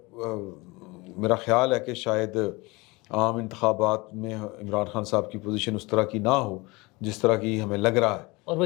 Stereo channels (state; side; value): quieter; right; 24.3 dB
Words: میرا خیال ہے کہ شاید عام انتخابات میں عمران خان صاحب کی پوزیشن اس طرح کی نہ ہو جس طرح کی ہمیں لگ رہا ہے. اور وہ